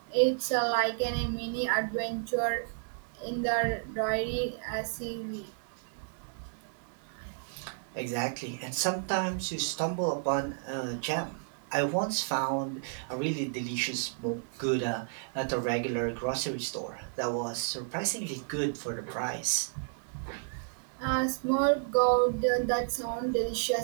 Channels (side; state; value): left; silent; 57 dB below the other